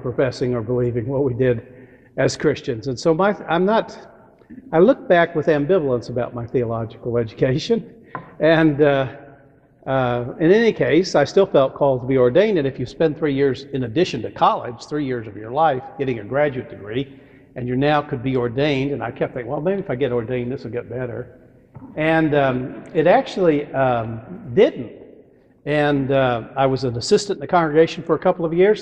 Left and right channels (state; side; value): identical; both; correlation 1.00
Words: or believing what we did as Christians. And so I look back with ambivalence about my theological education. And in any case, I still felt called to be ordained. And if you spend 3 years in addition to college, 3 years of your life getting a graduate degree, and you now could be ordained, and I kept thinking, well, maybe if I get ordained, this will get better. And it actually didn't. And I was an assistant in the congregation for a couple of years,